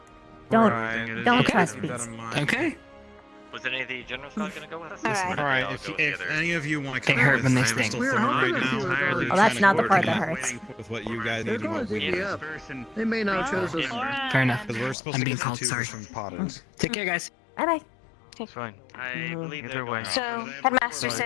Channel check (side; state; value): right; drops out; at 15.0 s